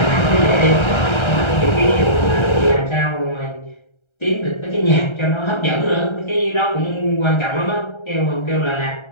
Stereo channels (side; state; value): right; late; 1.3 ms